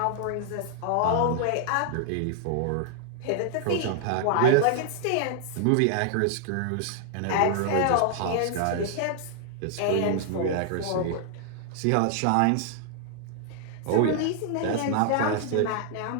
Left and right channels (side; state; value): both; different; correlation -0.01